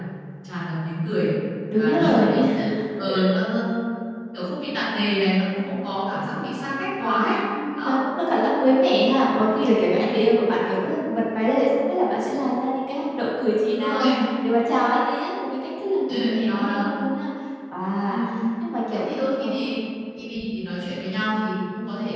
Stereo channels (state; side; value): identical; both; correlation 1.00